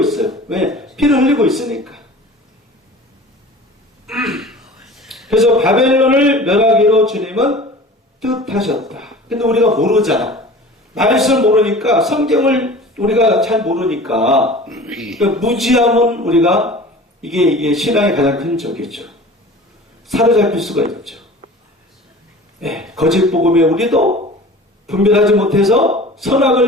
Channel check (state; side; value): normal; both; correlation 0.41